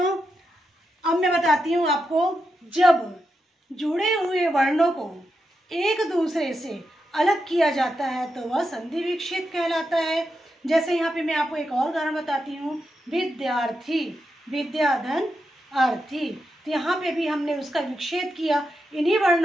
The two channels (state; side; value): normal; both; correlation 0.86